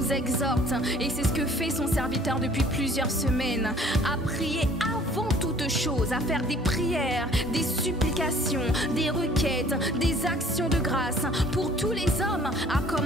exhorte, et c'est ce que fait son serviteur depuis plusieurs semaines, à prier avant toute chose, à faire des prières, des supplications, des requêtes, des actions de grâce pour tous les hommes, à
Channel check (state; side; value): normal; both; correlation 0.54